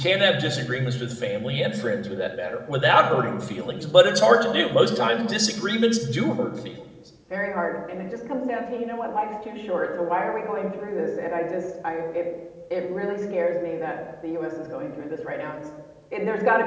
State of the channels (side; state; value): both; identical; correlation 1.00